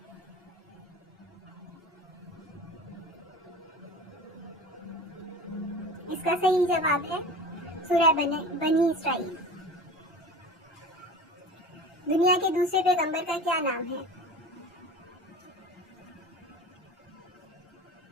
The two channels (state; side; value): normal; both; correlation 0.36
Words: इसका सही जवाब है सूरह बनी इसराइल। दुनिया के दूसरे पैगंबर का क्या नाम है?